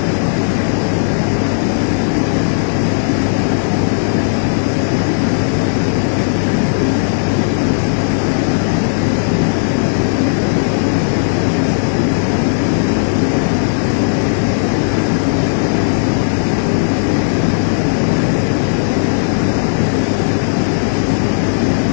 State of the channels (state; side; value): silent; right; digital silence